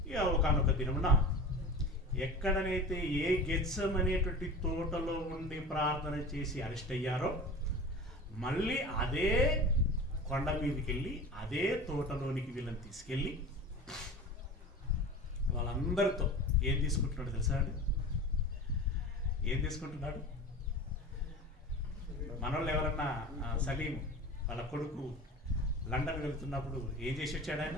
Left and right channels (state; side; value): normal; both; correlation 0.34